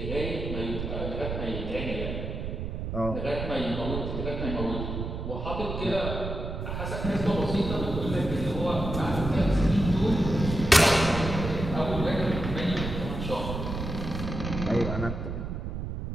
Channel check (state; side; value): noise; right; rumble, 5 dB below the sound